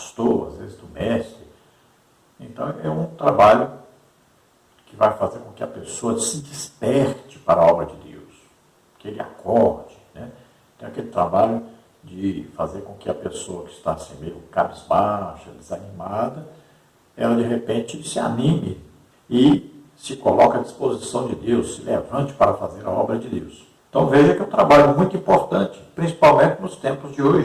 às vezes do mestre. Então, é um trabalho que vai fazer com que a pessoa se desperte para a obra de Deus, que ele acorde. Tem aquele trabalho de fazer com que a pessoa que está assim meio cabisbaixa, desanimada, ela de repente se anime e se coloque à disposição de Deus, se levante para fazer a obra de Deus. Então veja que é um trabalho muito importante, principalmente nos tempos de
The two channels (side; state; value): both; identical; correlation 1.00